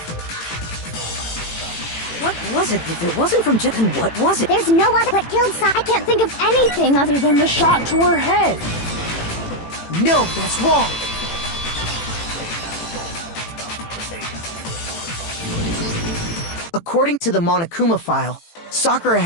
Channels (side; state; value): right; late; 18 ms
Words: What was it? If it wasn't from then what was it? There's no other. What killed Sakura? I can't think of anything other than the shot to her head. No, that's wrong! According to the Monokuma file, Sakura